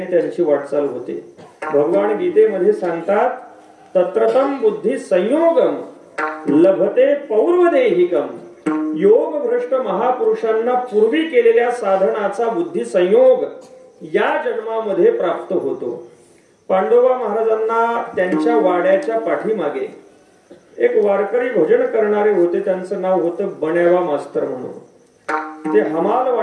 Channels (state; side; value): identical; both; correlation 1.00